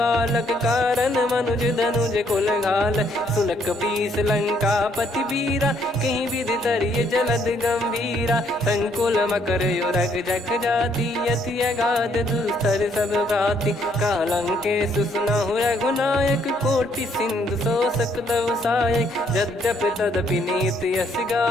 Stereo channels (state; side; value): normal; both; correlation 0.68